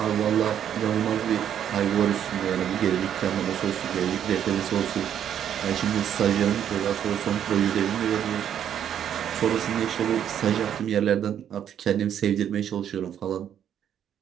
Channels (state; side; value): quieter; left; 9.6 dB